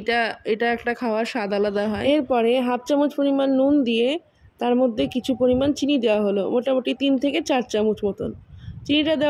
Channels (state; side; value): identical; both; correlation 1.00